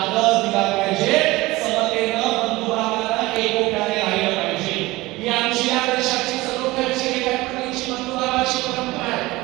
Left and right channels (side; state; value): left; quieter; 20.0 dB